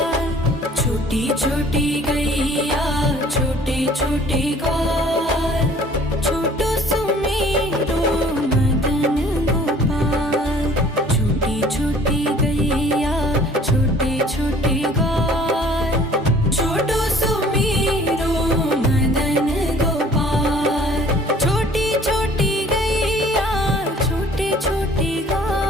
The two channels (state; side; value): normal; both; correlation 0.53